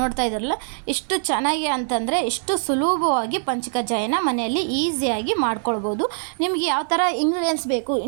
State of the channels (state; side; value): silent; left; digital silence